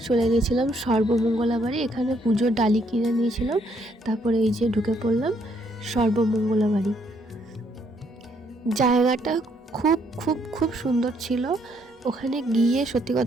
চলে গেছিলাম সর্বমঙ্গলা বাড়ি, এখানে পুজোর ডালি কিনে নিয়েছিলাম। তারপরে এই যে ঢুকে পড়লাম সর্বমঙ্গলা বাড়ি। জায়গাটা খুব খুব খুব সুন্দর ছিল। ওখানে গিয়ে সত্যি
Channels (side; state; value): both; normal; correlation 0.70